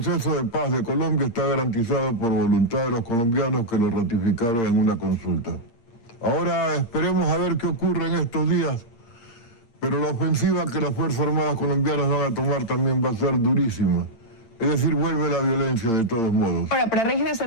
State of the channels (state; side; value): late; right; 8.8 ms